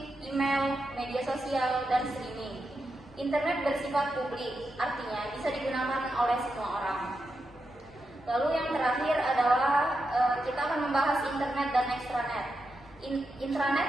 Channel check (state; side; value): normal; both; correlation 0.87